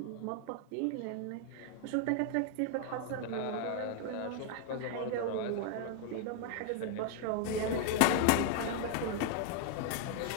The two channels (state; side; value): different; both; correlation 0.00